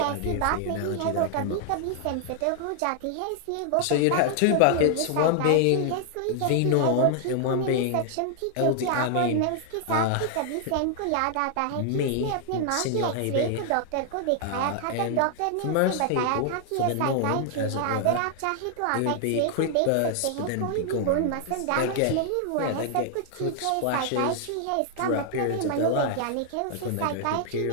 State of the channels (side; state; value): both; different; correlation 0.00